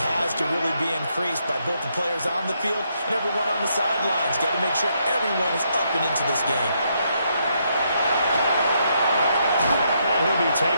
has to really be increased by both the players on the field and everyone on the sidelines. Got to make sure everyone is up and into this game. He'll be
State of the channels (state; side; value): inverted; both; correlation -0.76